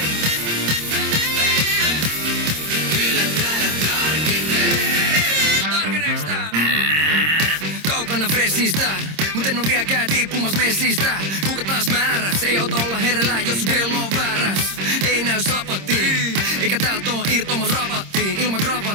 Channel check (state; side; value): late; left; 26 ms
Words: stressistä, mut en oo vieläkään tiippumas messistä. Kuka taas määräs, ei auta olla hereillä, jos sun kello on vääräs. Ei näy sapattiin, eikä täältä oo irtomas rabattiin. Ilman